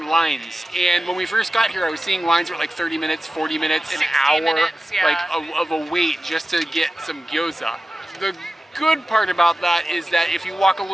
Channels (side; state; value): both; normal; correlation 0.94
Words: lines, and when we first got here I was seeing lines were like 30 minutes, 40 minutes, an hour, minutes, yeah. like of a wait just to get some gyoza. The good part about that is that if you walk a